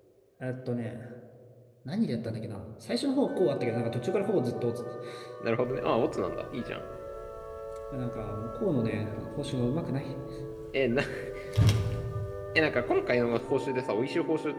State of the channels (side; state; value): both; identical; correlation 1.00